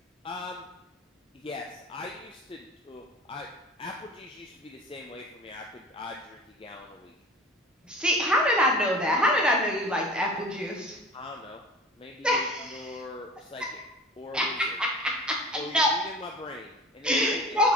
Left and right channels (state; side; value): normal; both; correlation 0.39